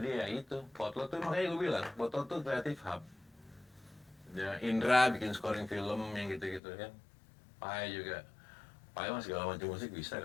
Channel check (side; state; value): right; drops out; at 6.6 s